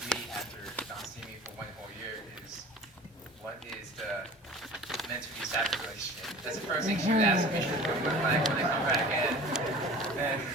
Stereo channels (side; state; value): both; normal; correlation 0.42